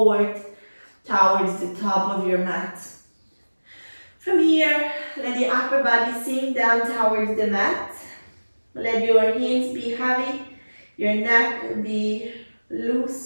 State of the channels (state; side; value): inverted; both; correlation -1.00